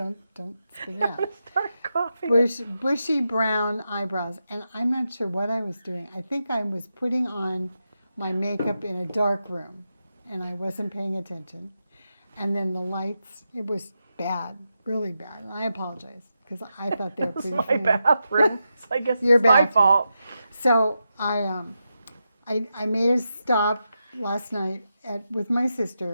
spit it out. Start coughing. Bushy brown eyebrows. And I'm not sure what I was doing. I think I was putting on my makeup in a dark room, and I wasn't paying attention. And then the lights, it was bad, really bad. And I apologize because I thought they were It's pretty my funny. bathroom. So I guess Your it's my bathroom. fault. So I made a stop last night with my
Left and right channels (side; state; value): both; inverted; correlation -0.87